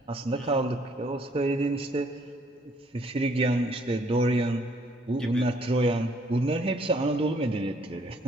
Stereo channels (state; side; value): normal; both; correlation 0.65